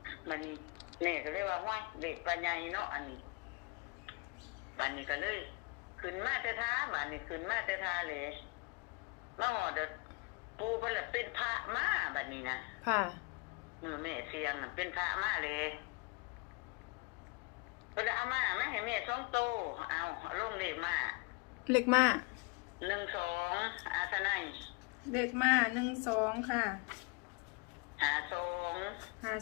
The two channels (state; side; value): quieter; right; 27.6 dB